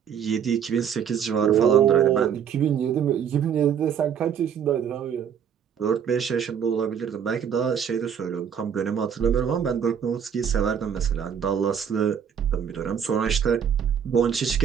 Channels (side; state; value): left; quieter; 8.1 dB